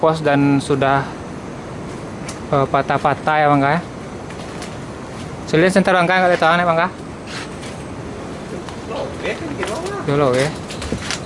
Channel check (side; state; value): both; identical; correlation 1.00